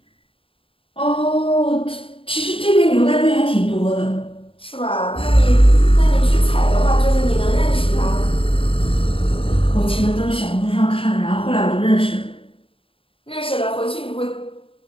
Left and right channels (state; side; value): late; right; 0.26 ms